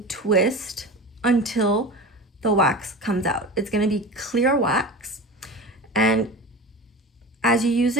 twist until the wax comes out. It's going to be clear wax, and as you use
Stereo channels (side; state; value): both; normal; correlation 0.32